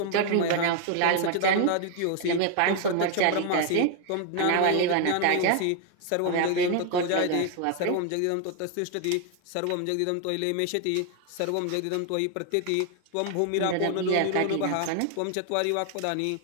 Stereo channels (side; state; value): both; different; correlation 0.00